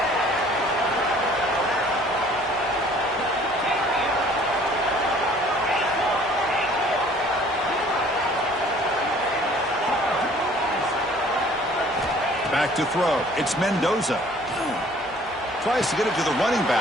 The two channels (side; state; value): both; normal; correlation 0.54